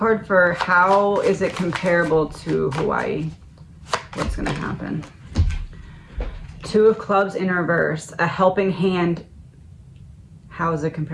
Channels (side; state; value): both; identical; correlation 1.00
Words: for how is it comparable to Hawaii? What's going to happen? Two of Clubs in reverse, a helping hand. How is it